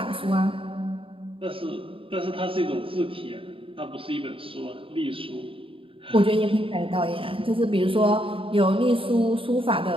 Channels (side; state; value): left; late; 0.26 ms